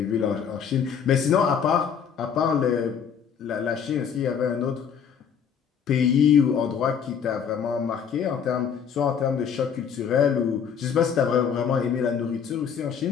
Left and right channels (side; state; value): right; quieter; 7.4 dB